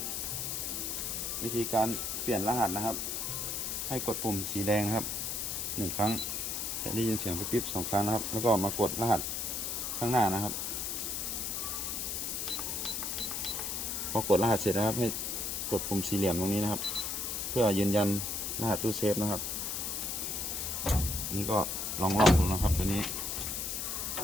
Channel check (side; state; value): left; noise; hiss, 2 dB below the sound